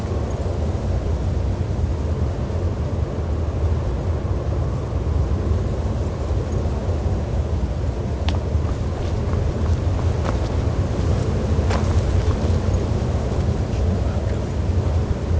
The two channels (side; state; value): both; identical; correlation 1.00